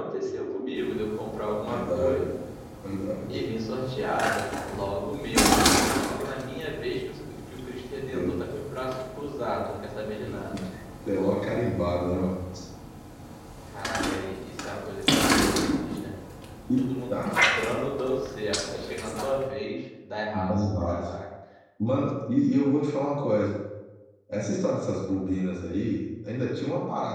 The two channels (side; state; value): both; identical; correlation 1.00